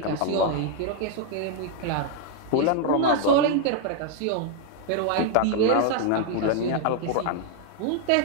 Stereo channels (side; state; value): both; different; correlation 0.00